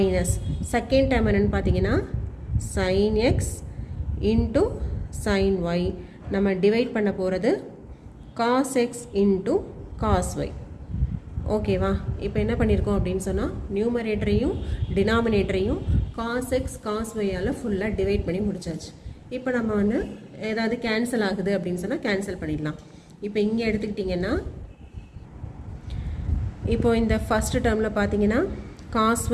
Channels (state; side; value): identical; both; correlation 1.00